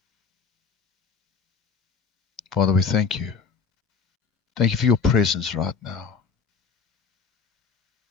Father, we thank you. Thank you for your presence right now.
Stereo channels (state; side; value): quieter; right; 5.5 dB